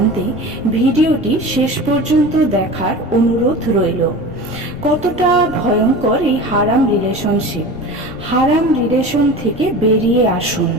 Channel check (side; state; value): left; noise; rumble, 16 dB below the sound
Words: ভিডিওটি শেষ পর্যন্ত দেখার অনুরোধ রইল। কতটা ভয়ঙ্কর এই হারাম রিলেশনশিপ। হারাম রিলেশন থেকে বেরিয়ে আসুন।